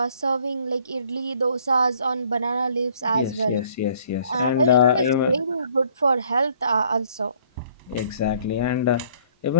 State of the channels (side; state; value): both; inverted; correlation -0.60